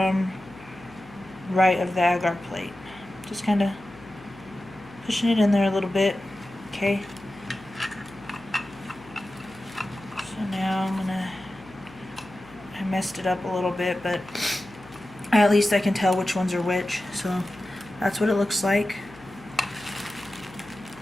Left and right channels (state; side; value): noise; left; hum, 21 dB below the sound